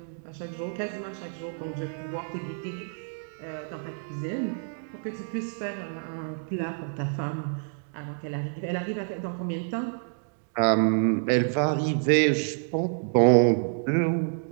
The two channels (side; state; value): left; silent; digital silence